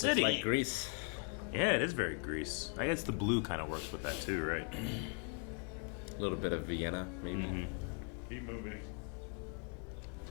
Like Greece. Yeah, it is very Greece. I guess the blue kind of works with that too, right? A little bit of Vienna, maybe. Keep moving.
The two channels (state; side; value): quieter; right; 36.2 dB